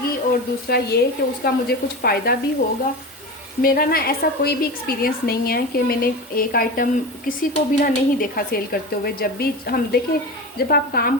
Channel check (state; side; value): normal; both; correlation 0.26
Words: और दूसरा ये कि उसका मुझे कुछ फ़ायदा भी होगा। मेरा ना ऐसा कोई भी एक्सपीरियंस नहीं है कि मैंने एक आइटम किसी को भी ना नहीं देखा सेल करते हुए। जब भी हम देखें, जब आप काम